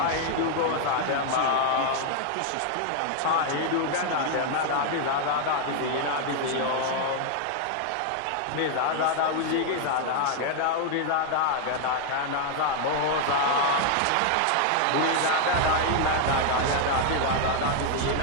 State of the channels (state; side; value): different; both; correlation 0.00